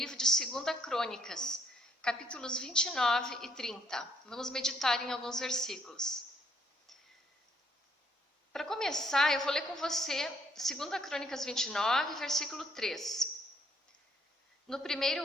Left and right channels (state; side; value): normal; both; correlation 0.69